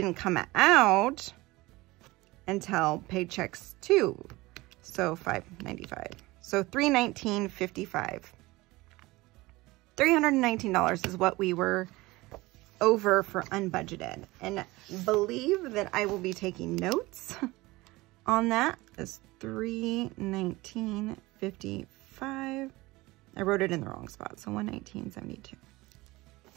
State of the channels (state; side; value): quieter; left; 20.6 dB